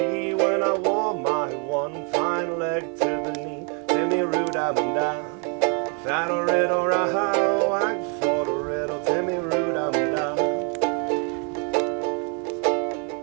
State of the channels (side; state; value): left; quieter; 38.2 dB